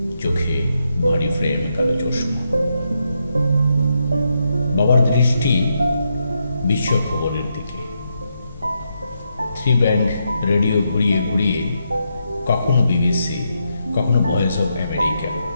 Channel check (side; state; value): both; inverted; correlation -0.82